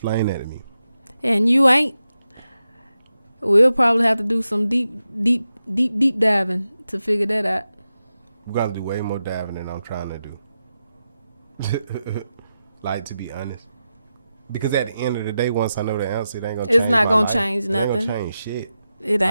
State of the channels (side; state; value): both; inverted; correlation -0.90